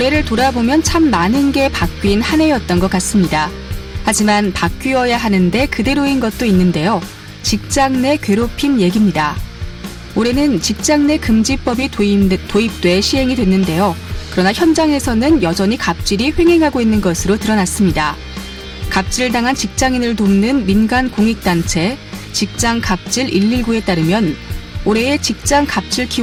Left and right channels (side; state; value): both; identical; correlation 1.00